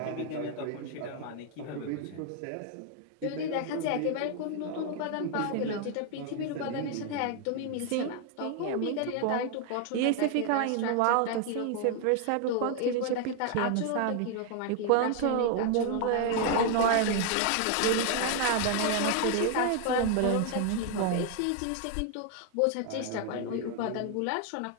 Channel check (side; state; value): both; different; correlation 0.00